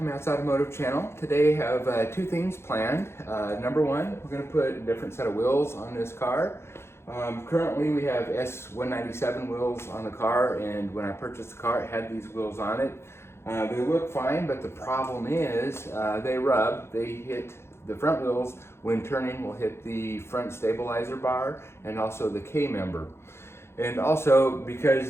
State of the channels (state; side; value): late; right; 0.12 ms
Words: Matt's Automotive Channel. Today I have two things planned. Number one, we're going to put a different set of wheels on this car. Currently we have S197 wheels on the car, and when I purchased the car it had these wheels on it. They look fine, but the problem is they rub. They hit the front wheels when turning, will hit the front stabilizer bar and also the K-member. And also